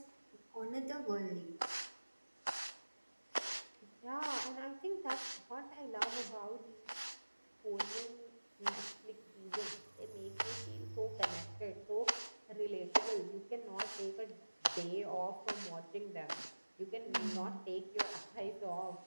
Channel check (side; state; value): both; inverted; correlation -1.00